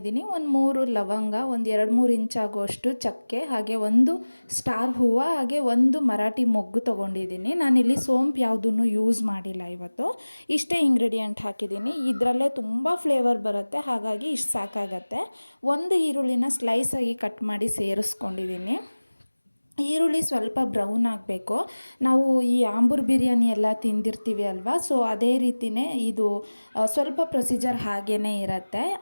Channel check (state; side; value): inverted; both; correlation -1.00